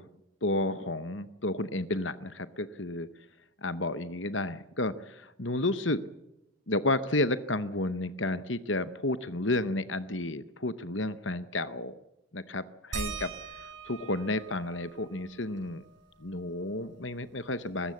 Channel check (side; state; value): both; normal; correlation 0.14